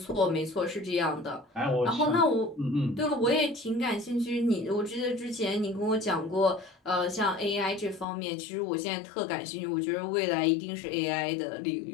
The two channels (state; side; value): drops out; right; at 8.1 s